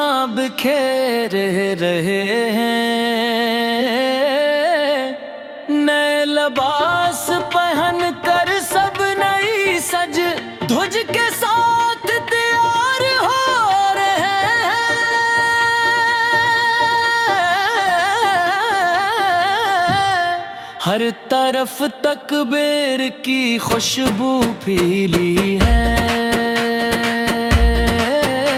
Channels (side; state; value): both; identical; correlation 1.00